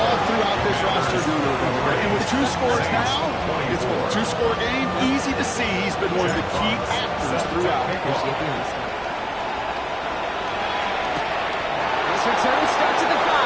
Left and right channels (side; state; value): both; identical; correlation 1.00